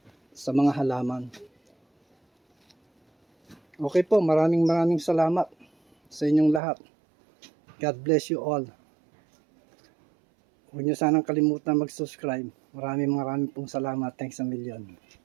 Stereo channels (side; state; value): left; drops out; at 6.6 s